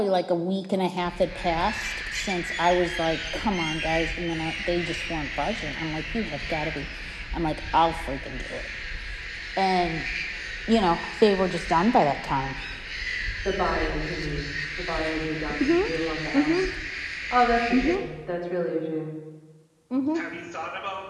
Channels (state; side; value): identical; both; correlation 1.00